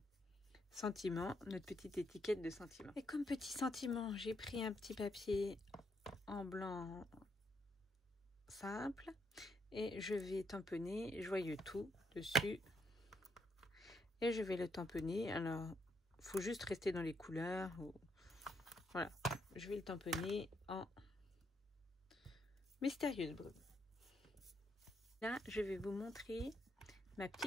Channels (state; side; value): normal; both; correlation 0.75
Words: sentiment, notre petite étiquette de sentiment. Et comme petit sentiment, j'ai pris un petit papier en blanc simple et je vais tamponner Joyeux tout dessus et je vais le tamponner. Alors, il faut juste rester dans les couleurs. Voilà, je vais le tamponner en mystérieuse brume. Là, je vais vous montrer ma